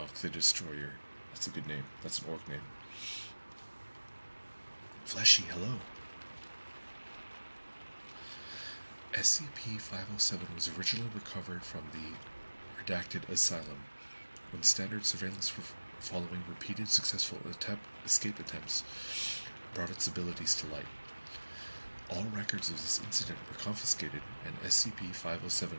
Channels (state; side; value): inverted; both; correlation -1.00